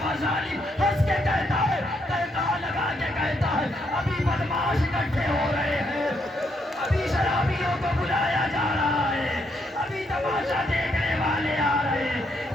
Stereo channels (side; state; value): both; normal; correlation 0.76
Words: ظالم ہنس کے کہتا ہے، کہتا لگا کے کہتا ہے ابھی بدماش اکٹھے ہو رہے ہیں، ابھی شرابیوں کو بلایا جا رہا ہے، ابھی تماشا دیکھنے والے آ رہے ہیں،